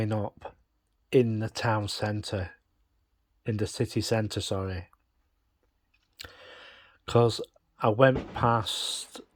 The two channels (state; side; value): identical; both; correlation 1.00